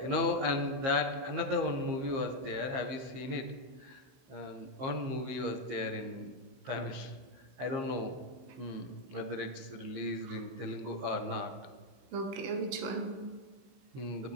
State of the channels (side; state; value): left; late; 16 ms